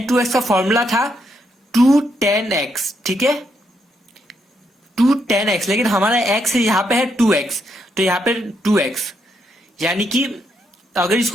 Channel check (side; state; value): both; normal; correlation 0.78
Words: 2x का फॉर्मूला था 2 tan x, ठीक है, 2 tan x, लेकिन हमारा x यहाँ पे है 2x, तो यहाँ पे 2x यानी कि अगर